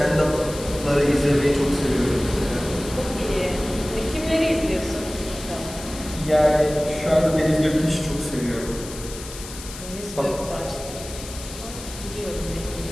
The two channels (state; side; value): noise; left; hiss, 13 dB below the sound